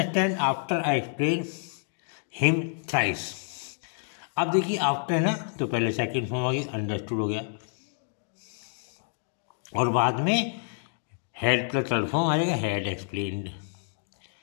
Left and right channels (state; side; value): silent; right; digital silence